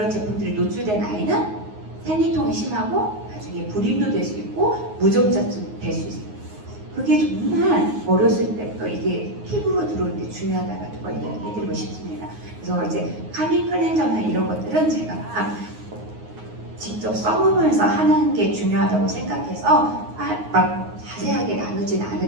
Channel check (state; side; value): late; left; 9.5 ms